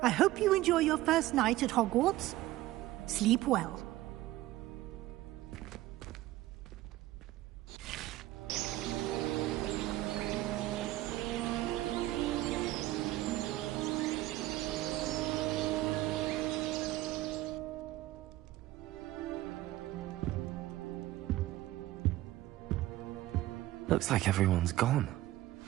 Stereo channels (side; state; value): left; quieter; 16.1 dB